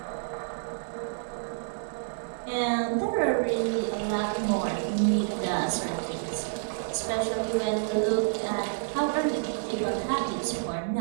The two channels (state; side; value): silent; left; digital silence